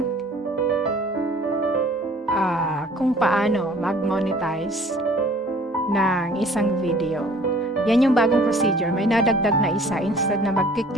kung paano mag-monetize ng isang video. Yan yung bagong procedure. May nadagdag na isa. Instead na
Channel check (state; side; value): normal; both; correlation 0.52